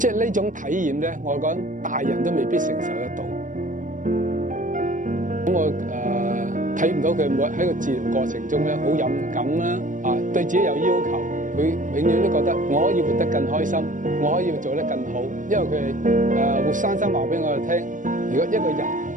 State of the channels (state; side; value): late; left; 0.38 ms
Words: 係呢種體驗咧，我講大人都未必承受得到。咁我睇唔到佢喺個治療過程中咧好勇敢啦，對自己有要求，佢永遠都覺得我可以活得更開心，我可以做得更好，因為佢係活生生話俾我哋聽，如果一個人